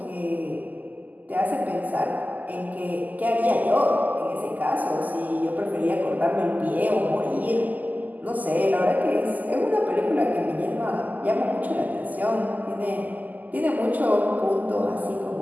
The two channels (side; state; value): left; late; 0.081 ms